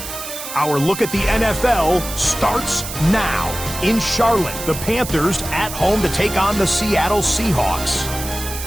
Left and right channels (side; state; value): right; noise; hiss, 9 dB below the sound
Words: Our look at the NFL starts now. In Charlotte, the Panthers at home to take on the Seattle Seahawks.